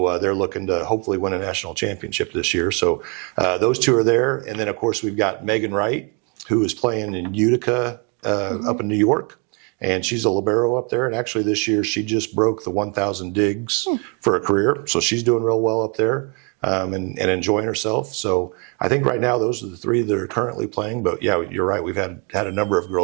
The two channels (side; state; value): left; quieter; 33.3 dB